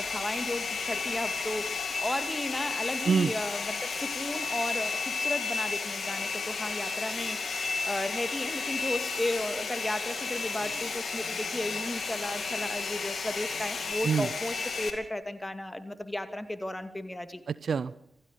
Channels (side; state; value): both; normal; correlation 0.90